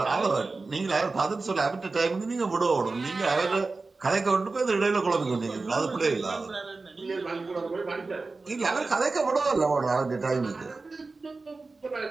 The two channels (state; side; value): quieter; left; 3.7 dB